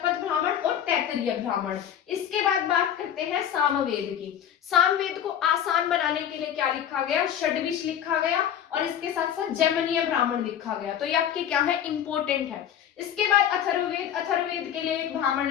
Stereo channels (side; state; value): right; quieter; 9.7 dB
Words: ब्राह्मण और तैत्तिरीय ब्राह्मण। इसके बाद बात करते हैं सामवेद की। सामवेद को आसान बनाने के लिए क्या लिखा गया? षड्विश लिखा गया, और इसके साथ साथ जैमिनीय ब्राह्मण लिखा गया। तो ये आपके क्या है? इंपॉर्टेंट है। इसके बाद अथर्ववेद, अथर्ववेद के लिए एक ब्राह्मण